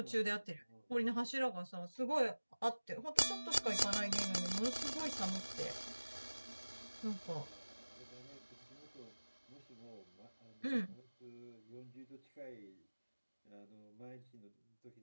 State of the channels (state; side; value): inverted; both; correlation -1.00